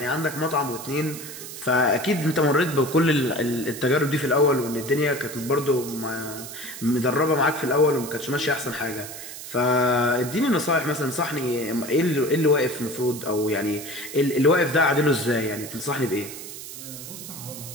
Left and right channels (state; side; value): noise; right; hiss, 11 dB below the sound